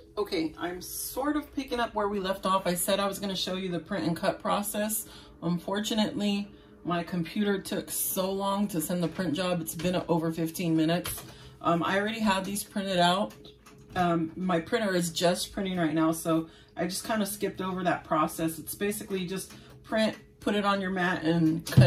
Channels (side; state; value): both; identical; correlation 1.00